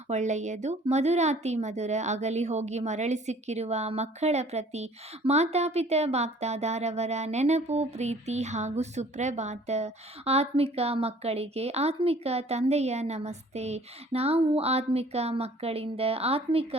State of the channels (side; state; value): both; normal; correlation 0.53